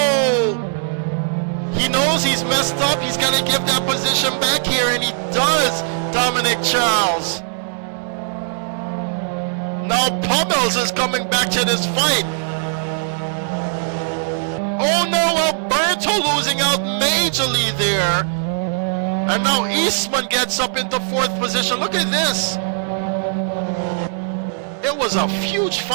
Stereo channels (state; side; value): silent; left; digital silence